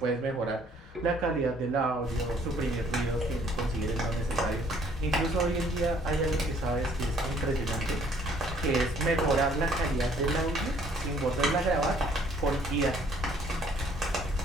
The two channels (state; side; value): normal; both; correlation 0.61